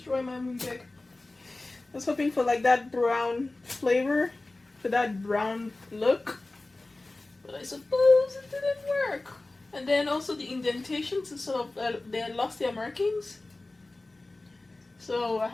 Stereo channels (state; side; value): quieter; right; 3.0 dB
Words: my mooncake. I was hoping for like that brown flavor, for that brown look, but I suppose it didn't work. And then also the indentations, is sort of they lost their markings. So I